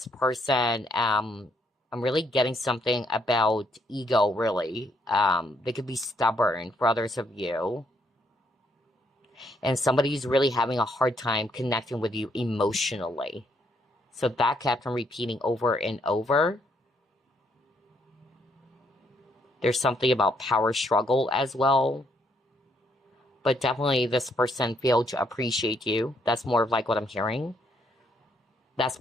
person, I'm really getting something about ego, really. They could be stubborn for others of you. And somebody's really having a hard time connecting with you emotionally. So that kept on repeating over and over. There's something about power struggle as well. But definitely this person failed to appreciate you. That's more of like what I'm hearing. That's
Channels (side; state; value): both; normal; correlation 0.72